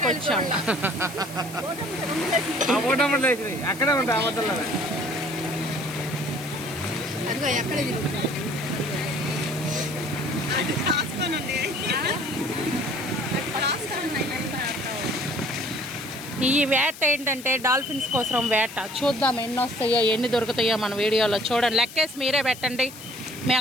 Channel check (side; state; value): left; noise; hiss, 15 dB below the sound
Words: వచ్చాము. అక్కడే ఉంటాయి ఈ వేట ఏంటంటే డాల్ఫిన్స్ కోసం వేట. చూద్దాం ఎన్ని వస్తాయో ఎన్ని దొరుకుతాయో మన వీడియోలో. చూడండి, లెక్కేసి మీరే పెట్టండి.